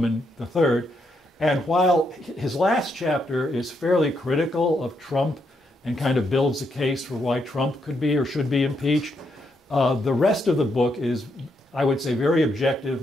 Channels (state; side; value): normal; both; correlation 0.79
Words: III. And while his last chapter is fairly critical of Trump and kind of builds a case for why Trump could be or should be impeached, the rest of the book is, I would say, very objective,